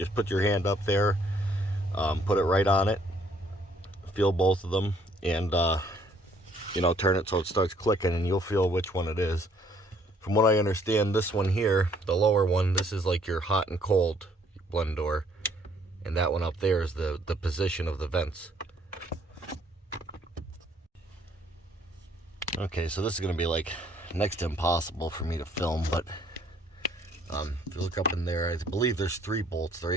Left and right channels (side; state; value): both; normal; correlation 0.63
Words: put your hand up there, put it right on it, feel both of them, and turn it so it starts clicking, and you'll feel which one it is. From what I understand, this one here, the lower one, this is like your hot and cold blend door, and that one up there is the position of the vents. Okay, so this is going to be like next to impossible for me to film, but if you look up in there, I believe there's 3 bolts. They're